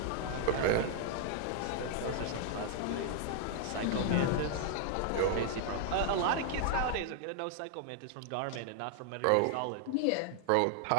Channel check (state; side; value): different; both; correlation 0.00